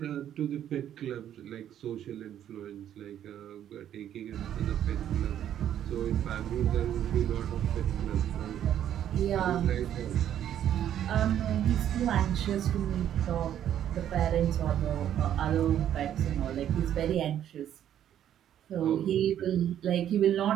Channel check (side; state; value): left; quieter; 10.5 dB